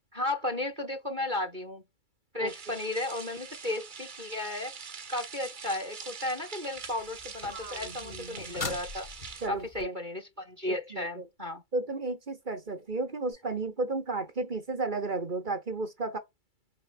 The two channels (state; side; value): late; left; 2.3 ms